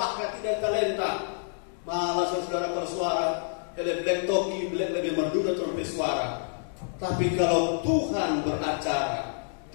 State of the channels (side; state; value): right; silent; digital silence